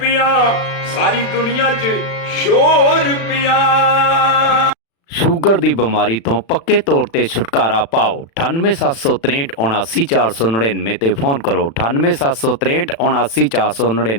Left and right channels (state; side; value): late; right; 36 ms